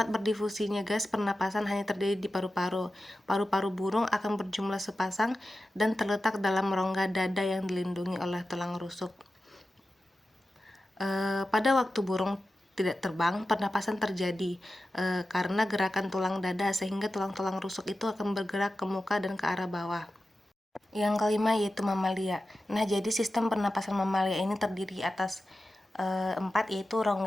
berdifusinya gas pernapasan hanya terjadi di paru-paru. Paru-paru burung akan berjumlah sepasang dan terletak dalam rongga dada yang dilindungi oleh tulang rusuk. Pada waktu burung tidak terbang, pernapasan terjadi karena gerakan tulang dada, sehingga tulang-tulang rusuk itu akan bergerak ke muka dan ke arah bawah. Yang kelima yaitu mamalia. Nah, jadi sistem pernapasan mamalia ini terdiri atas 4, yaitu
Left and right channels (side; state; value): both; normal; correlation 0.93